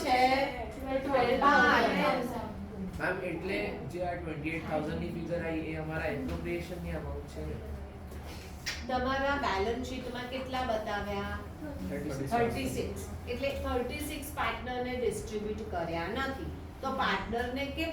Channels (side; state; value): both; identical; correlation 1.00